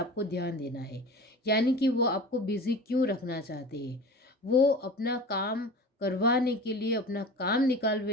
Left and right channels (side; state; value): both; normal; correlation 0.36